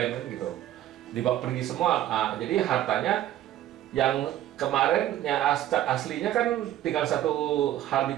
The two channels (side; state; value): left; quieter; 12.7 dB